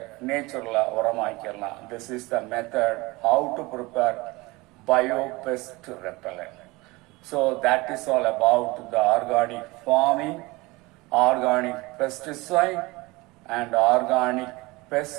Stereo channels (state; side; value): quieter; left; 22.9 dB